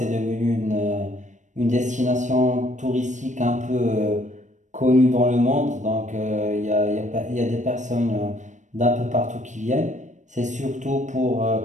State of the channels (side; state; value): left; late; 0.35 ms